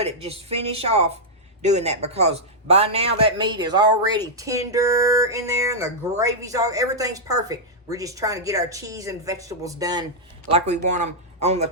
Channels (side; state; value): both; normal; correlation -0.06